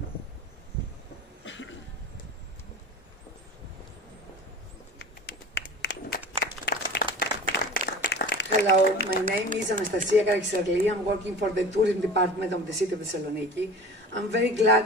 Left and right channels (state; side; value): normal; both; correlation 0.38